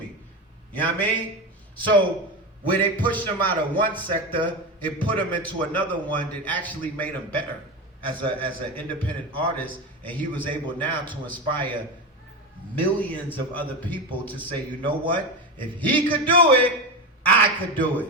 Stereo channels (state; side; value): normal; both; correlation 0.19